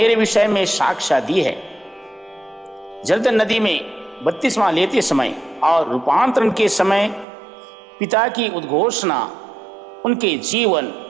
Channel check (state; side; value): drops out; left; at 7.2 s